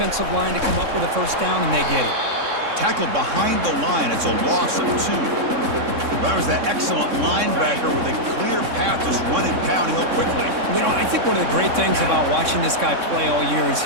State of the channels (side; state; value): left; late; 3.6 ms